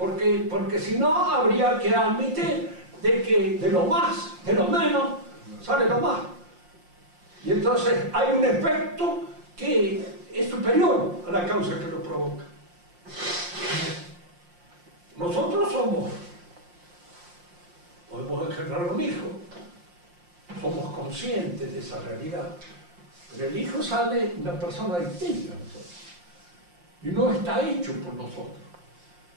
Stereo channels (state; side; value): late; left; 5.7 ms